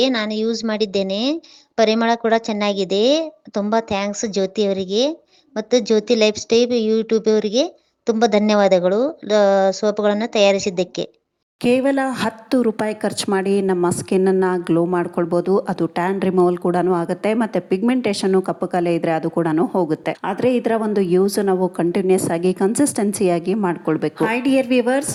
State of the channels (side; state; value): both; identical; correlation 1.00